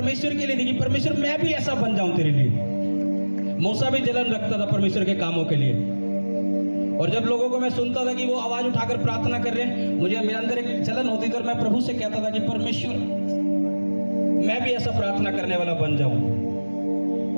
के लिए थी कि परमेश्वर मैं भी ऐसा बन जाऊं तेरे लिए। मूसा भी जलन रखता था परमेश्वर के कामों के लिए। और जब लोगों को मैं सुनता था कि वो आवाज उठाकर प्रार्थना कर रहे हैं, मुझे मेरे अंदर एक जलन होती थी और मैं प्रभु से कहता था कि परमेश्वर मैं भी ऐसा प्रार्थना करने वाला बन जाऊं।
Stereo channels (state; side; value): inverted; both; correlation -1.00